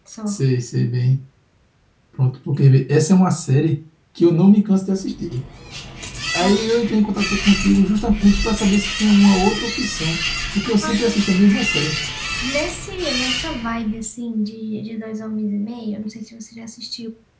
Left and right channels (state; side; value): identical; both; correlation 1.00